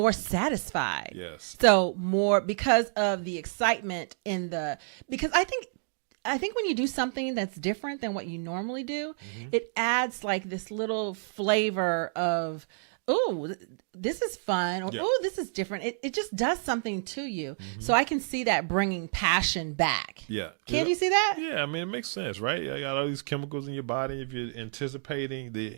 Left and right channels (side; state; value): left; silent; digital silence